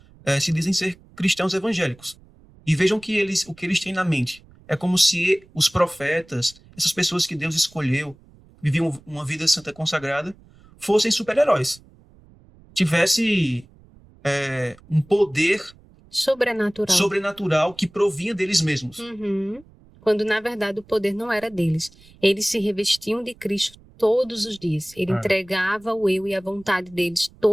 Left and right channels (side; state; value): right; noise; rumble, 26 dB below the sound